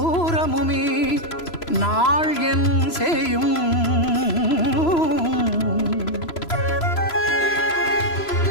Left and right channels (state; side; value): late; right; 3.0 ms